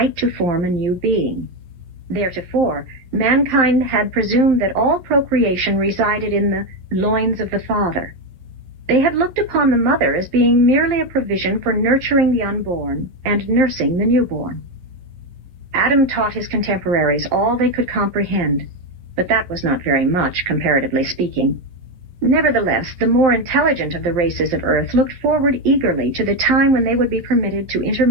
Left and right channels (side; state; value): left; late; 12 ms